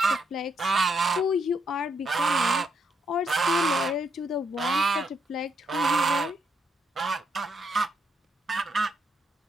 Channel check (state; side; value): normal; both; correlation 0.76